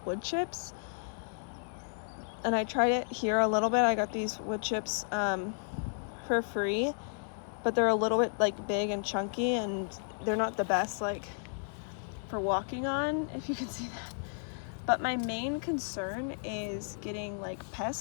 wood chips. And I tried it here a little bit. I got these wood chips for free, but they're a little bit like big and chunky, and they're not the best like for walking on, if you can see that. But my main concern is getting like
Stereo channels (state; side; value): silent; right; 56 dB below the other